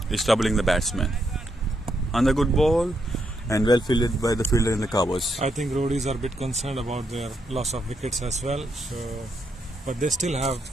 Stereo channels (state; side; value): normal; both; correlation 0.79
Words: is troubling the batsman. On the good ball, and well fielded by the fielder in the covers. I think Roadies are a bit concerned about their loss of wickets as well. But they still have